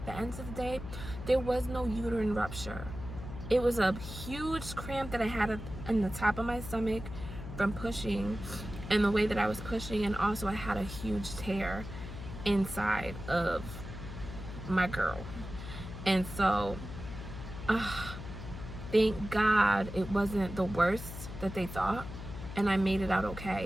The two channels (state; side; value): noise; left; hum, 10 dB below the sound